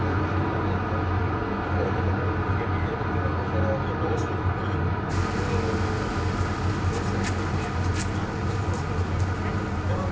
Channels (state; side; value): identical; both; correlation 1.00